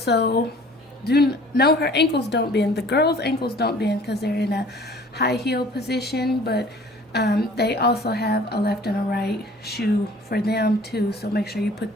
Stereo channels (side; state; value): both; normal; correlation 0.50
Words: her ankles don't bend. The girls' ankles don't bend because they're in a high heel position, but they also have a left and a right shoe for them too, so make sure you